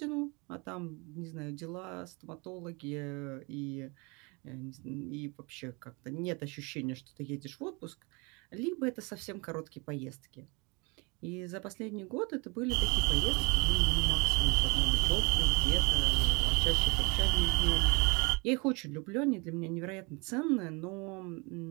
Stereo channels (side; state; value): left; quieter; 29.1 dB